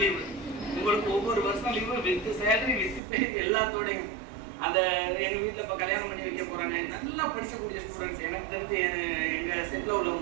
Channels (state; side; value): drops out; left; at 3.0 s